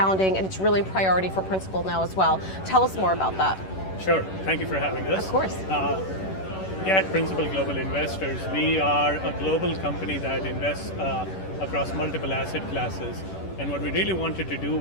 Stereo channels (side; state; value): right; late; 11 ms